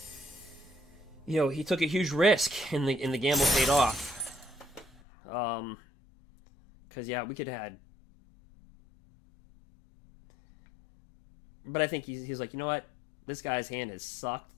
you know, he took a huge risk, and the gamble paid off. Because yeah, we could have had. But I think he's like, you know what? This guy's hand has sucked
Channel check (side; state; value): right; drops out; at 4.9 s